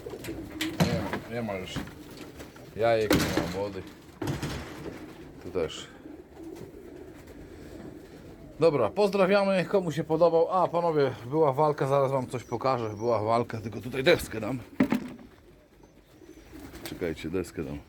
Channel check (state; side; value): identical; both; correlation 1.00